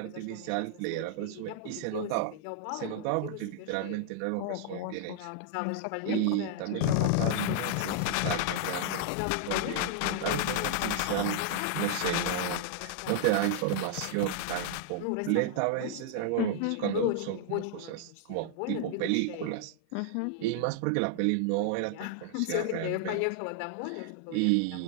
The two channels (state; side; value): different; both; correlation -0.01